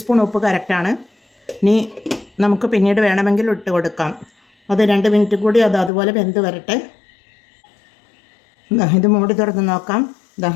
ഉപ്പ് കറക്റ്റാണ്. ഇനി നമുക്ക് പിന്നീട് വേണമെങ്കിൽ ഇട്ട് കൊടുക്കാം. അത് 2 മിനിറ്റ് കൂടി അതുപോലെ വെന്ത് വരട്ടെ. ഇത് മൂടി തുറന്ന് നോക്കാം.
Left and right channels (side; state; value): right; drops out; at 5.9 s